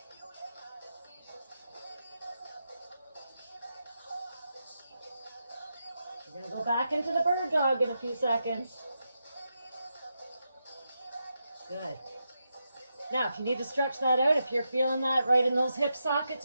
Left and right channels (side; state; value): both; inverted; correlation -0.86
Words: We're going to go back into the bird dog in a few seconds. Good. Now, if you need to stretch that out, if you're feeling that right in those hip sockets